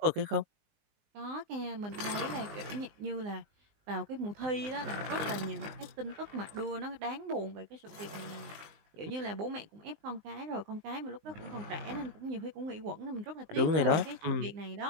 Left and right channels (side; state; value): left; late; 19 ms